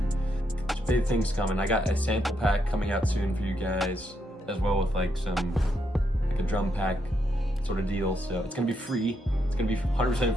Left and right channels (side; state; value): both; normal; correlation 0.79